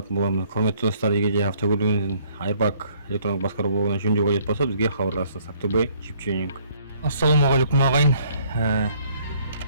боламыз. Құрметті достар, егер де автокөлігінен Airbag электрондық басқару блогынан жөндеу қажет болса, бізге хабарласыңыз. Ақтөбе Чипченинг. Ассалаумағалейкум ағайын.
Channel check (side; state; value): both; inverted; correlation -0.62